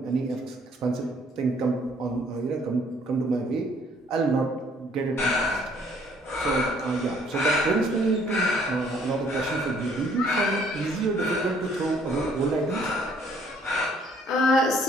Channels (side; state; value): both; normal; correlation 0.62